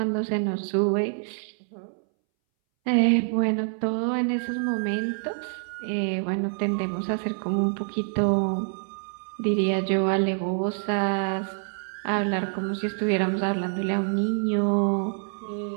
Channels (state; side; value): silent; left; 61 dB below the other